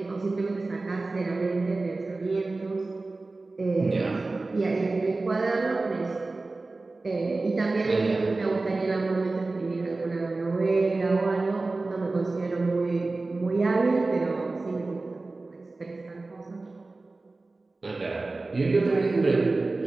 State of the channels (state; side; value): quieter; left; 3.4 dB